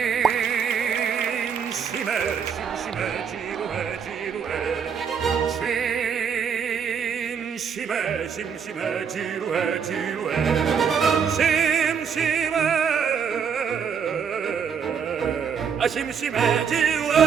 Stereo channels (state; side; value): quieter; left; 7.0 dB